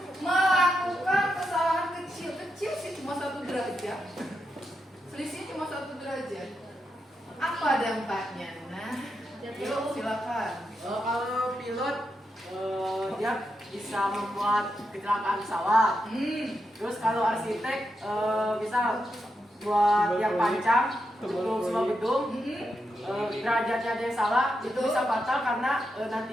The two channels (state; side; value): normal; both; correlation 0.85